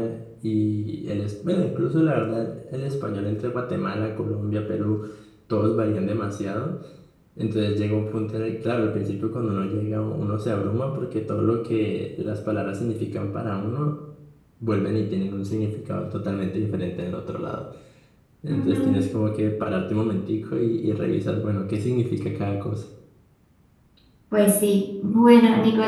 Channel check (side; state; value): both; identical; correlation 1.00